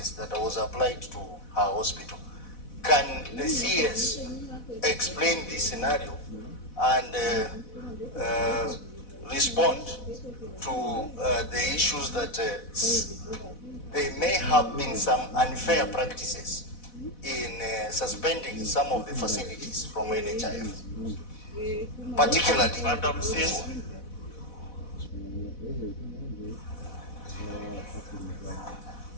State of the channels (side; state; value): right; late; 4.1 ms